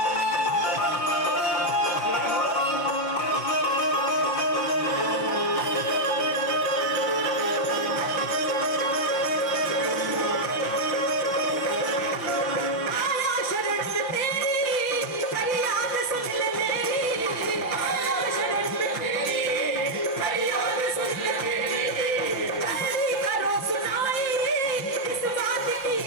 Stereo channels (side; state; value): right; late; 5.6 ms